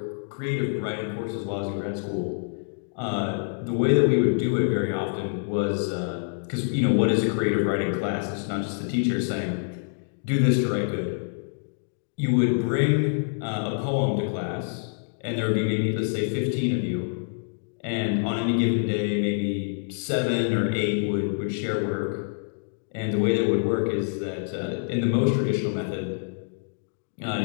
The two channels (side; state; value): right; silent; digital silence